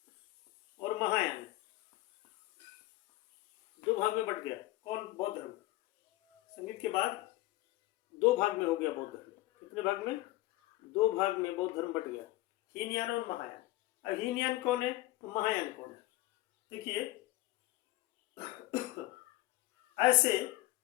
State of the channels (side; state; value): right; quieter; 17.8 dB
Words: और महायान 2 भाग में बट गया। कौन? बौद्ध धर्म। संगीत के बाद 2 भाग में हो गया बौद्ध धर्म। कितने भाग में? 2 भाग में बौद्ध धर्म बट गया, हीनयान और महायान। अब हीनयान कौन है तो महायान कौन है? देखिए, ऐसे